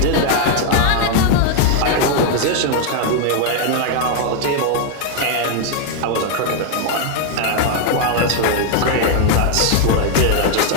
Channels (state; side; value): different; both; correlation 0.00